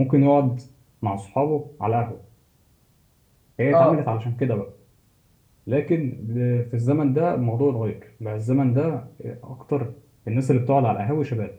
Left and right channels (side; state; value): both; identical; correlation 1.00